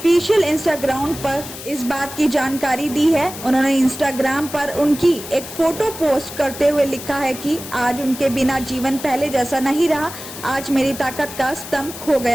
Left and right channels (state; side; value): noise; left; hiss, 12 dB below the sound